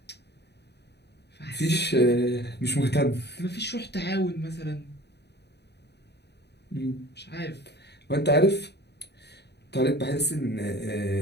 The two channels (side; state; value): right; late; 0.49 ms